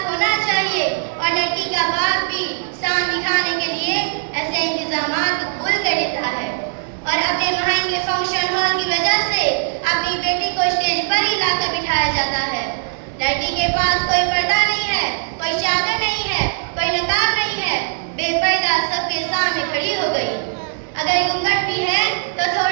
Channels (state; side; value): silent; left; digital silence